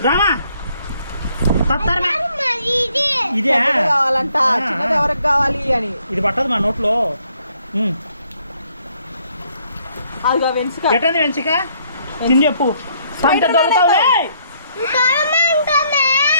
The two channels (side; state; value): both; inverted; correlation -0.68